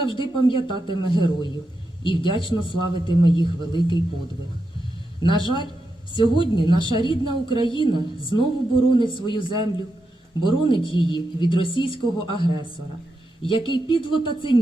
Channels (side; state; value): both; normal; correlation 0.86